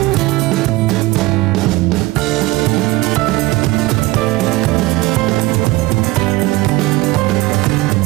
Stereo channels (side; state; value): left; quieter; 19.9 dB